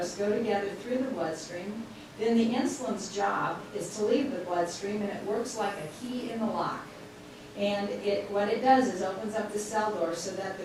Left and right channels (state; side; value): identical; both; correlation 1.00